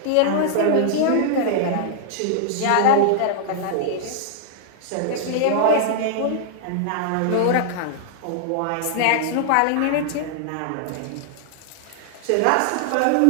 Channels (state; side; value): different; both; correlation -0.01